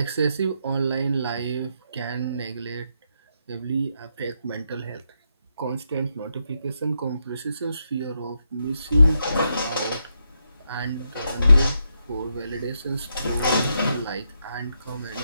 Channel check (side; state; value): both; inverted; correlation -0.81